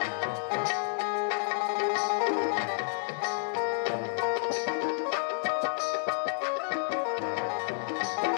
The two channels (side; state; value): right; silent; digital silence